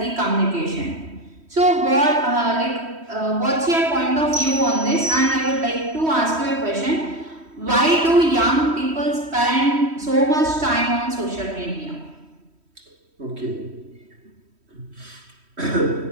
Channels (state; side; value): late; left; 3.1 ms